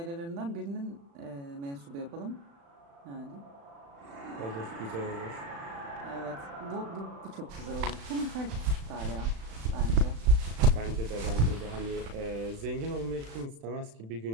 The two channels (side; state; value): left; late; 36 ms